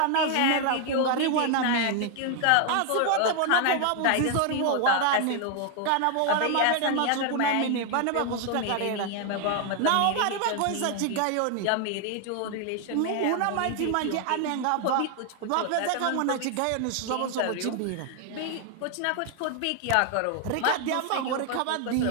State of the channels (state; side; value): different; both; correlation 0.00